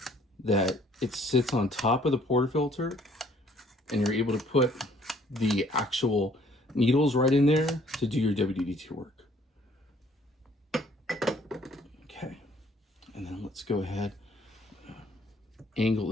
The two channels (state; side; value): normal; both; correlation 0.61